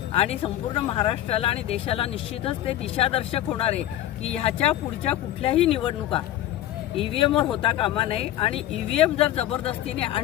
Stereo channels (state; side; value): quieter; right; 13.1 dB